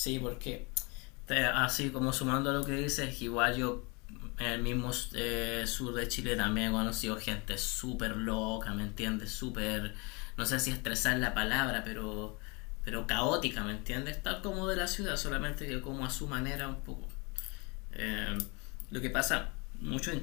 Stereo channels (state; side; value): quieter; right; 29.3 dB